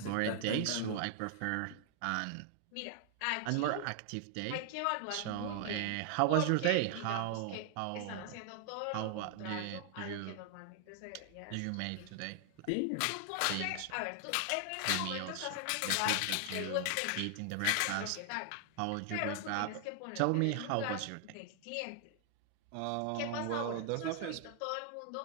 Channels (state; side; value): different; both; correlation 0.00